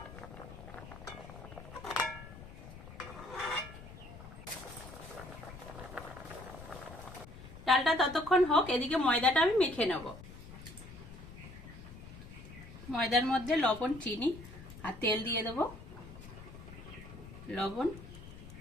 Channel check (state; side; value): noise; left; rumble, 14 dB below the sound